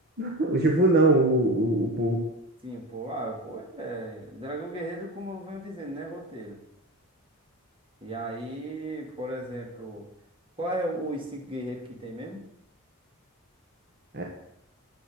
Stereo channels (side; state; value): both; normal; correlation 0.27